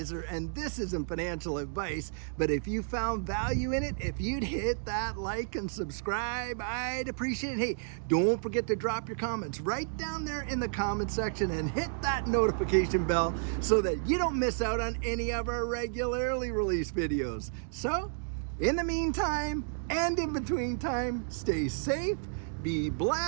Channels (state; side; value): silent; left; digital silence